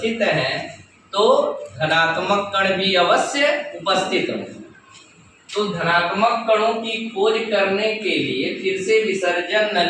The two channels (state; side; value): identical; both; correlation 1.00